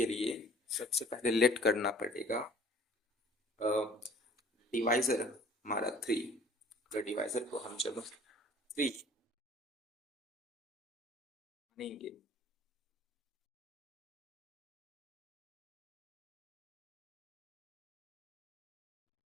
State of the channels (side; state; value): both; normal; correlation 0.51